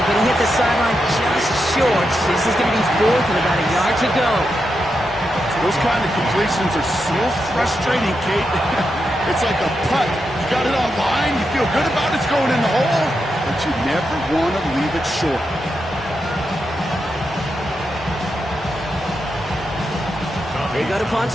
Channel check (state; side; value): normal; both; correlation 0.86